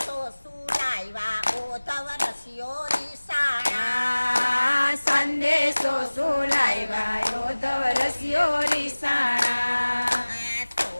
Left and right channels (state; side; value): inverted; both; correlation -1.00